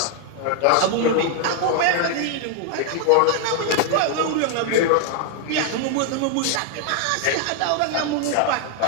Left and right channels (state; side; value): different; both; correlation 0.00